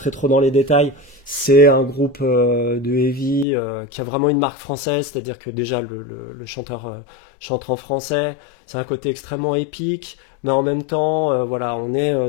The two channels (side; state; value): right; drops out; at 3.5 s